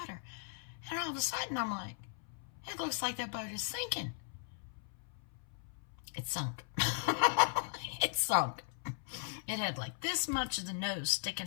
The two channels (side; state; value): right; silent; 52 dB below the other